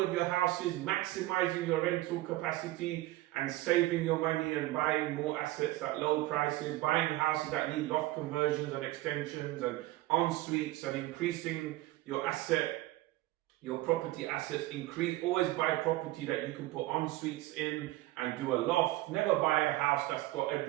your houses, maximizing your rental capacity and saving your money and buying more assets at low prices, buying houses that need loft conversions and extensions and en-suites and increasing your property assets. Always buy property that you can put en-suites in and do a loft. Never buy a house that's got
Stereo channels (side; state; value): left; quieter; 17.7 dB